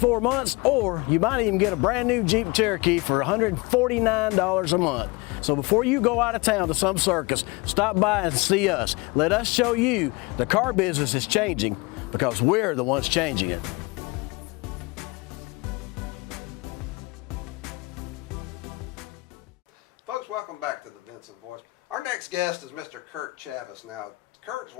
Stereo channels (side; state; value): right; quieter; 25.3 dB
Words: months, or you might even get a brand new Jeep Cherokee for $149 a month. So before you go out of town to some circus, stop by and see us. Let us show you the car business is changing, because we're the ones changing it. Folks, welcome back to the Vinson Voice. Our next guest is Mr. Kirk Chavis. Now,